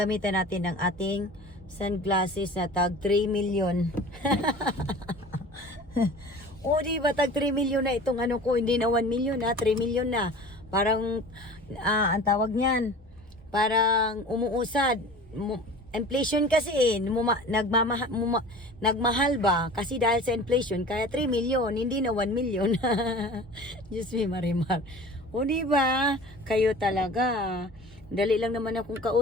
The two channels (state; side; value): normal; both; correlation 0.40